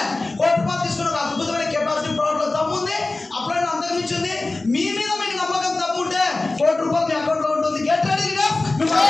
కోటి రూపాయలు తీసుకున్న ఒక అద్భుతమైన కెపాసిటీ ప్రోడక్ట్లో దమ్ముంది. అప్పుడైనా అంతకుమించింది. మీ మీద మీకు నమ్మకం దమ్ముంటే 1 కోటి రూపాయలు మీ అకౌంట్లో ఉంటుంది. Get ready.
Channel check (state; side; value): quieter; right; 3.2 dB